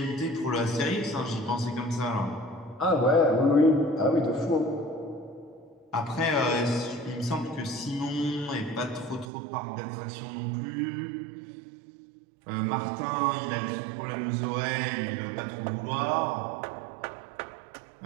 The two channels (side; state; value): left; drops out; at 9.2 s